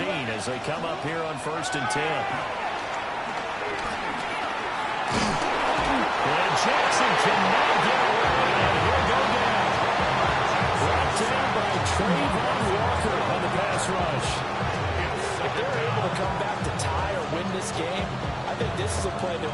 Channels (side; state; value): both; identical; correlation 1.00